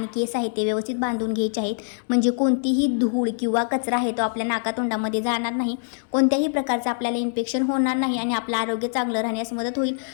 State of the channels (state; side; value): silent; right; digital silence